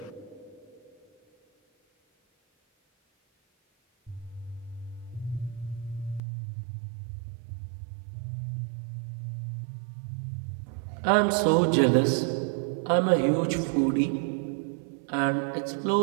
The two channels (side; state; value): left; drops out; at 6.2 s